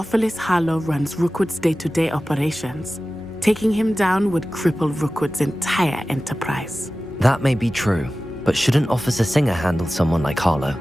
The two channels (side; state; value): both; normal; correlation 0.96